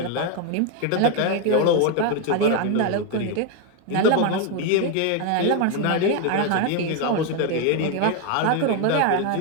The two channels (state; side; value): different; both; correlation 0.01